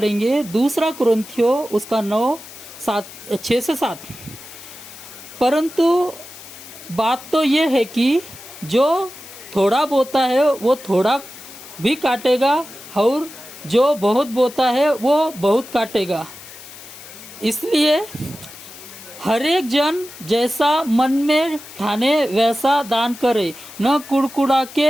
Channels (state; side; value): noise; left; hiss, 16 dB below the sound